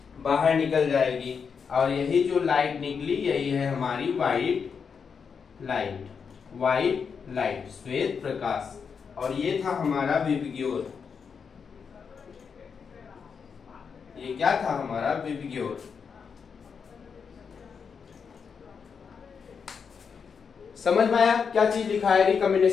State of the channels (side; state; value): right; quieter; 6.2 dB